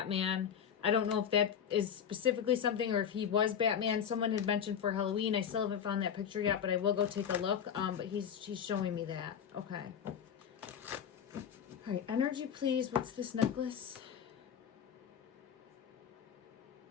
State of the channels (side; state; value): right; quieter; 8.2 dB